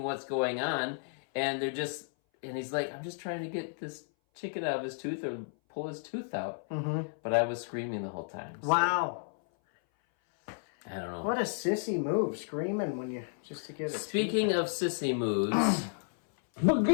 what's going on, and he's like, I'm just trying to get this chicken out of his tooth or pull his tooth out. But I was screaming the whole time. So. Wow. I don't know. What a sissy move, screaming just to get it. Speaking of sissy moves,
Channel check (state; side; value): silent; right; 56 dB below the other